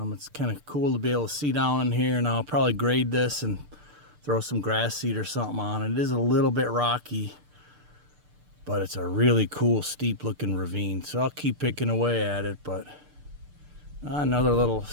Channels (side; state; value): left; late; 6.7 ms